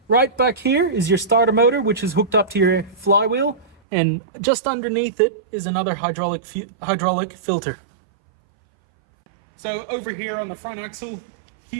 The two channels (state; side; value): drops out; left; at 3.8 s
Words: Right back here is your starter motor, which is hooked up to your flywheel, and just underneath it is another hydraulic filter. So over here on the front axle,